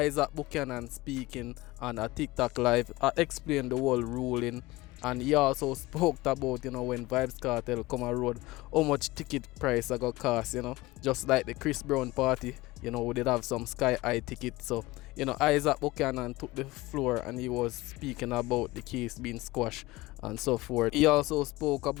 Buchanan speaking on a TikTok live, explained the whole ruling, and he also spoke about when Vibes Cartel come on road, how much ticket price I got cost, just like the Chris Brown party, we did have some sky high tickets. So Issac Buchanan took the floor and he was speaking about the case being squashed and so forth. He also spoke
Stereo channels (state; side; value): quieter; right; 20.0 dB